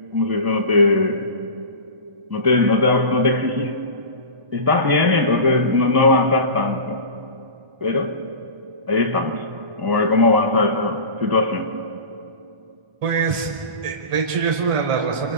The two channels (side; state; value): left; late; 1.5 ms